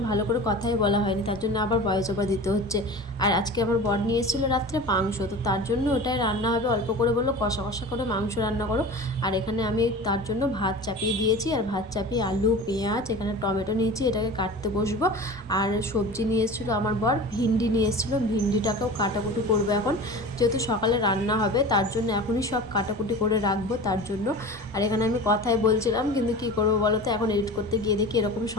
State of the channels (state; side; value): normal; both; correlation 0.35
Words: ভালো করে কথাই বলা হয়নি, তার জন্য আবার ভয়েস ওভার দিতে হচ্ছে। আর আজকে আমার বর নিয়ে এসেছিলো রাত্রে মাংস, তো তার জন্য ওটাই রান্না হবে, অল্প করে বললো কষা কষা করে মাংস রান্না করো। আর এখানে আমি তার জন্য ভাত চাপিয়ে দিয়েছি, আর ভাত চাপিয়ে আলু পেঁয়াজ এখানে টমেটো নিয়েছি, এটাকে কাটতে বসবো। আর সবজি নিয়ে এসেছিলো আমার বর, ভিন্ডি নিয়ে এসেছিলো, ভিন্ডিটাকেও কাটাকুটি করবো এখন, যেহেতু সকালে রান্না হবে তার জন্য এখনই সব কাটাকুটি করে রাখবো তার জন্য। আর এখানে আমি কথাই বলছিলাম, কিন্তু কি করবো বলো তো, এখন এডিট করতে গিয়ে দেখি এরকম